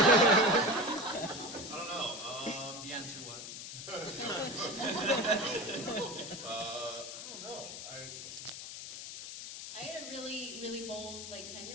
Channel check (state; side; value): noise; left; hiss, 9 dB below the sound